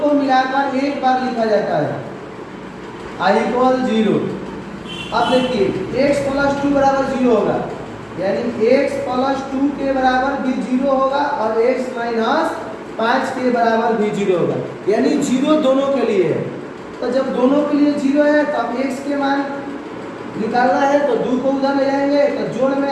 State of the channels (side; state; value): both; identical; correlation 1.00